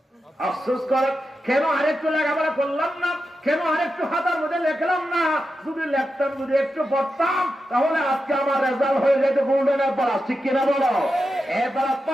আফসোস করে, কেন আরেকটু লেখাপড়া করলাম না, কেন আরেকটু হাতার মধ্যে লেখলাম না। যদি লেখতাম, যদি একটু পড়তাম, তাহলে আজকে আমার রেজাল্ট হয়ে যেত গোল্ডেন প্লাস, ঠিক কিনা বলো? এবার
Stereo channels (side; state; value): both; normal; correlation 0.89